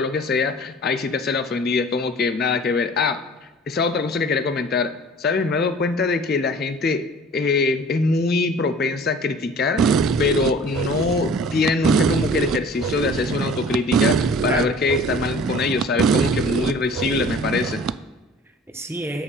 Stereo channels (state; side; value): normal; both; correlation 0.46